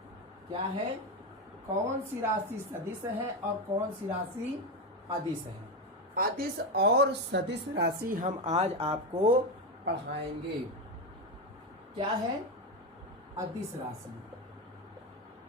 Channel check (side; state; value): both; normal; correlation 0.13